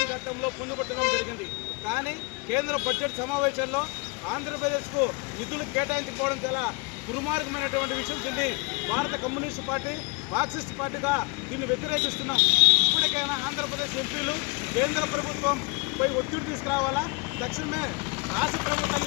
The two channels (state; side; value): quieter; right; 29.2 dB